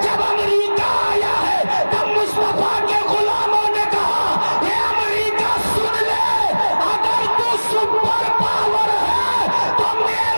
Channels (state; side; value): inverted; both; correlation -1.00